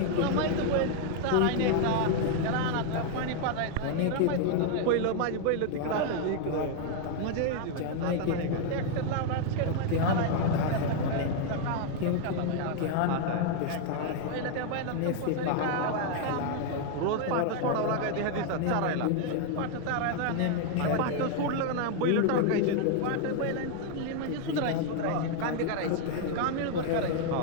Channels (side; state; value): both; different; correlation 0.00